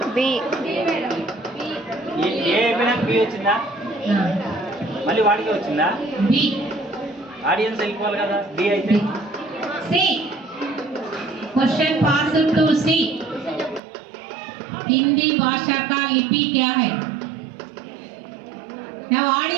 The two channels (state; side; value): drops out; left; at 13.8 s